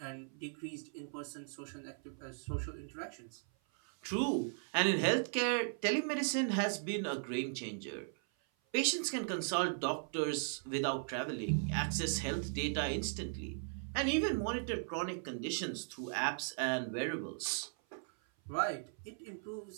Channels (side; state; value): left; silent; 53 dB below the other